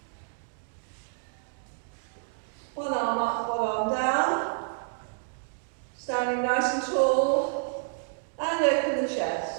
One arm up, one arm down. Standing nice and tall. And open the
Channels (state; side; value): silent; left; digital silence